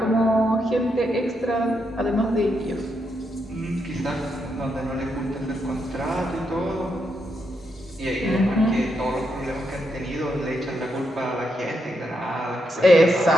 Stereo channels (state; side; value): normal; both; correlation 0.81